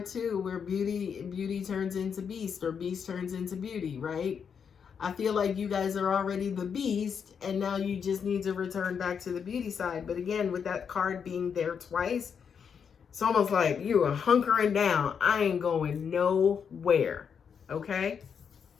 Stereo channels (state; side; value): quieter; right; 6.9 dB